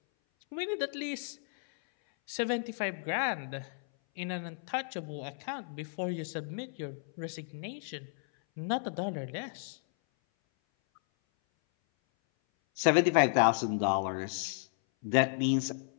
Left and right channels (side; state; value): right; silent; 56 dB below the other